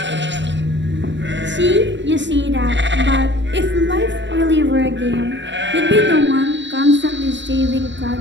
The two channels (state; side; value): late; left; 0.53 ms